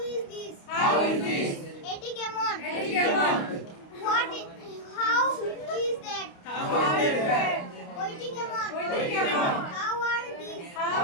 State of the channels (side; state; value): right; late; 29 ms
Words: is this how is this, এটি কেমন এটি কেমন, what how is that how is that, ওইটি কেমন ওইটি কেমন, how are these how